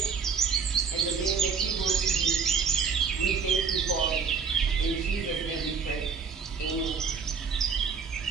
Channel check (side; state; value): left; quieter; 5.8 dB